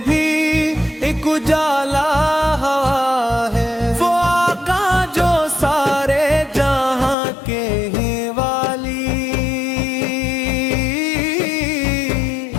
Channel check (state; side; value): drops out; right; at 7.2 s